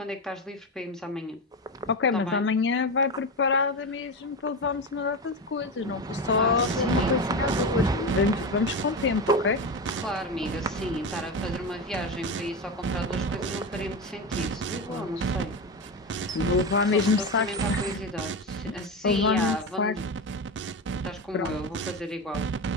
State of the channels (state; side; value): normal; both; correlation 0.19